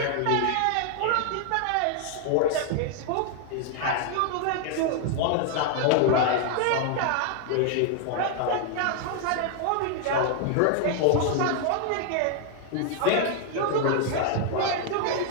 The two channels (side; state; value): both; different; correlation 0.00